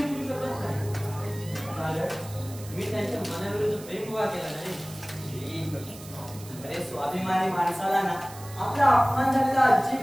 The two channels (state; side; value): noise; right; hiss, 17 dB below the sound